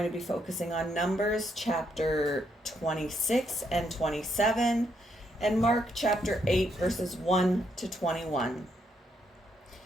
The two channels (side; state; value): both; normal; correlation 0.76